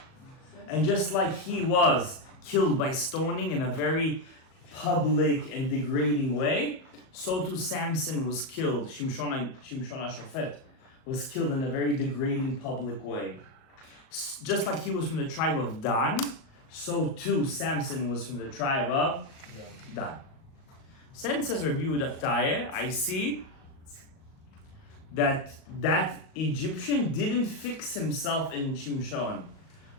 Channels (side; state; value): right; late; 38 ms